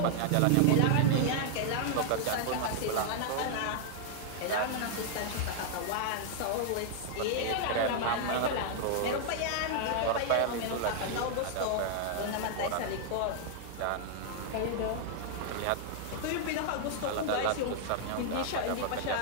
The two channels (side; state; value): both; different; correlation -0.01